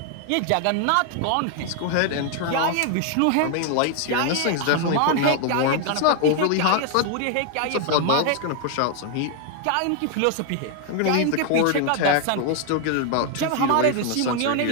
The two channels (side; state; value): both; different; correlation 0.00